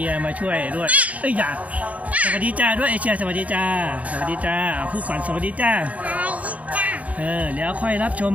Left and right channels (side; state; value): left; late; 0.069 ms